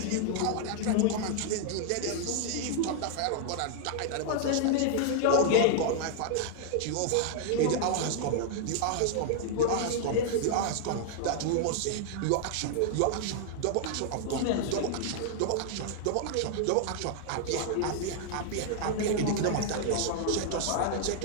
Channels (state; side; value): different; both; correlation -0.01